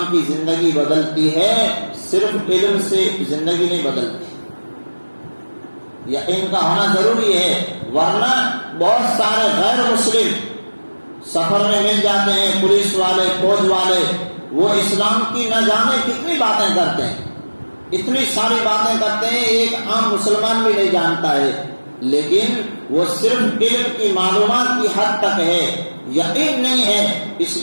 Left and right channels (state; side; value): inverted; both; correlation -1.00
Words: کی زندگی بدلتی ہے، صرف علم سے زندگی نہیں بدلتی، یقین کا ہونا ضروری ہے، ورنہ بہت سارے غیر مسلم سفر میں مل جاتے ہیں، پولیس والے، فوج والے، وہ اسلام کی نہ جانے کتنی باتیں کرتے ہیں، اتنی ساری باتیں کرتے ہیں، ایک عام مسلمان بھی نہیں جانتا ہے، لیکن وہ صرف علم کی معلومات کی حد تک ہے، یقین نہیں ہے، اس